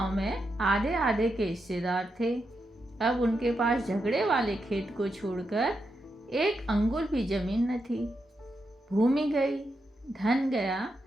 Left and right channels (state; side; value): normal; both; correlation 0.85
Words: में आधे आधे के हिस्सेदार थे। अब उनके पास झगड़े वाले खेत को छोड़कर एक अंगुल भी जमीन न थी। भूमि गई, धन गया,